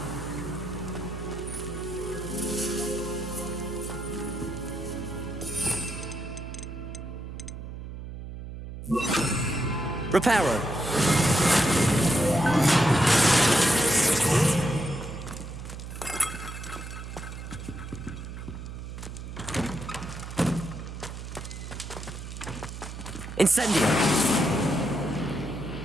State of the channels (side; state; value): right; noise; hum, 10 dB below the sound